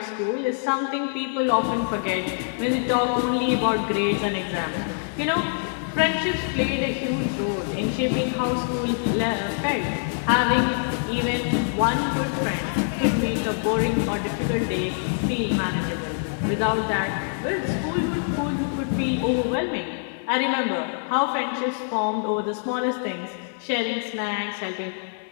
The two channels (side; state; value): right; silent; 62 dB below the other